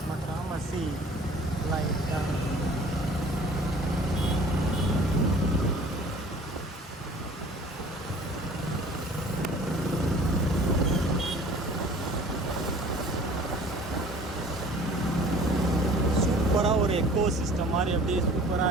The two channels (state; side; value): normal; both; correlation 0.48